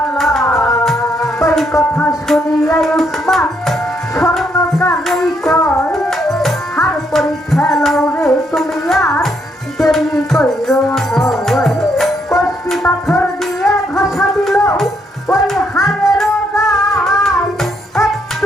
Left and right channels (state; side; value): normal; both; correlation 0.74